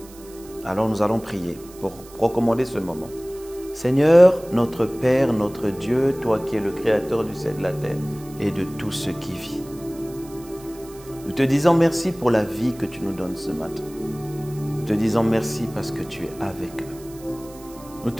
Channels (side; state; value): right; noise; hiss, 21 dB below the sound